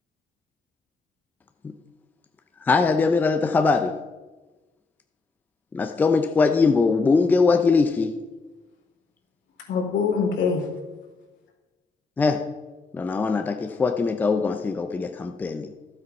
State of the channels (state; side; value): quieter; right; 4.1 dB